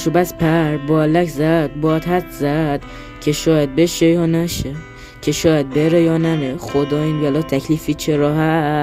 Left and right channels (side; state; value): both; identical; correlation 1.00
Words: بس پر بالک زد، باد حد زد که شاید بشه یا نشه، که شاید بره یا نره. خدا این بلا تکلیفی چرا